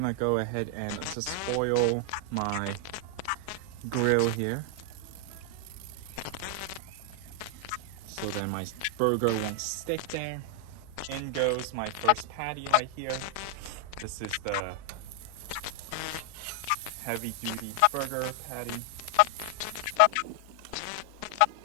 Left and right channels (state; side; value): different; both; correlation 0.00